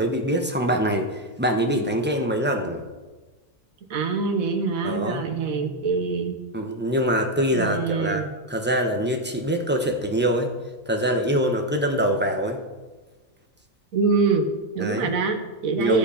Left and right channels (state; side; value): normal; both; correlation 0.04